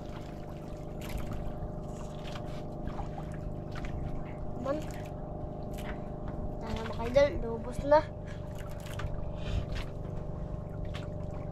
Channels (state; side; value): identical; both; correlation 1.00